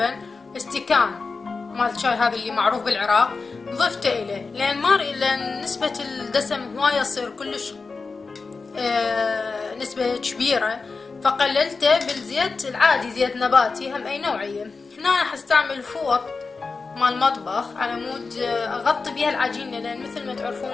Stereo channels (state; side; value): quieter; right; 4.3 dB